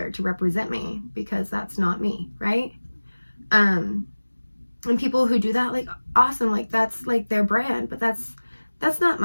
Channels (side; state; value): both; inverted; correlation -1.00